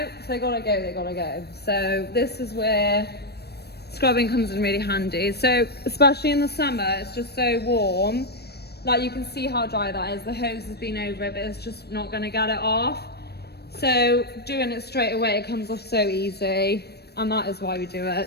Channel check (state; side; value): late; right; 0.47 ms